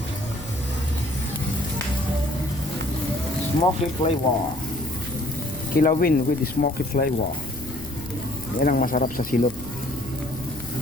Smoky flavor. Kilawin with smoky flavor. Yan ang masarap sa silot.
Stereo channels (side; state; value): left; noise; rumble, 15 dB below the sound